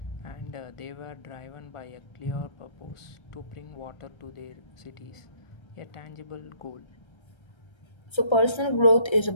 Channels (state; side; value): late; right; 1.3 ms